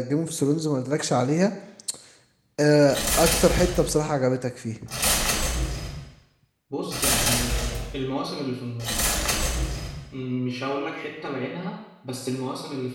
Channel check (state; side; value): identical; both; correlation 1.00